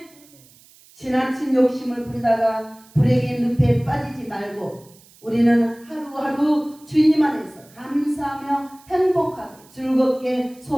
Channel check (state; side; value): noise; right; hiss, 26 dB below the sound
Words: 지나친 욕심을 부리다가 불행의 늪에 빠지지 말고 우리는 하루하루 주님 안에서 감사하며 행복하게 즐겁게